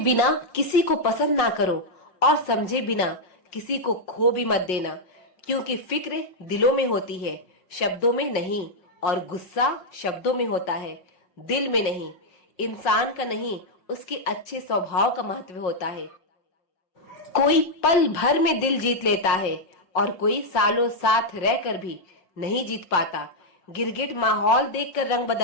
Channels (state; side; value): late; right; 5.5 ms